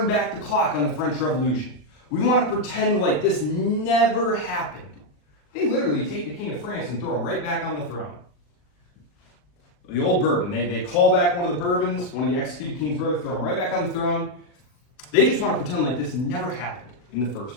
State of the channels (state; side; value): late; right; 40 ms